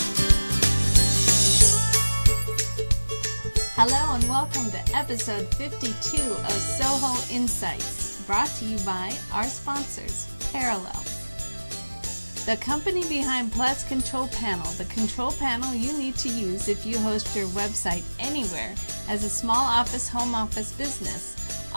Hello and welcome to episode 52 of SOHO Insights, brought to you by our sponsors, Parallel. The company behind Plus Control Panel, the control panel you need to use if you host your website anywhere as a small office, home office business.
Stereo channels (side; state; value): both; inverted; correlation -1.00